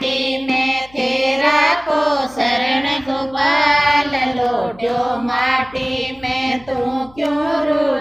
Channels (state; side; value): noise; left; hum, 26 dB below the sound